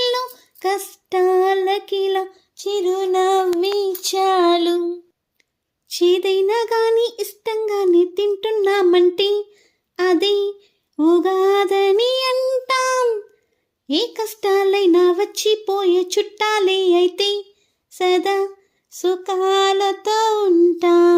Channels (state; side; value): identical; both; correlation 1.00